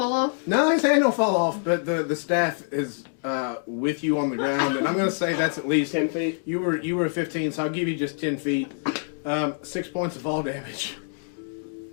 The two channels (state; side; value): silent; right; 61 dB below the other